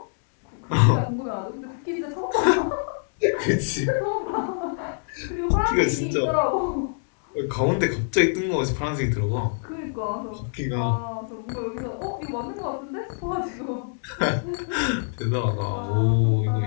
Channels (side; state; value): right; silent; 61 dB below the other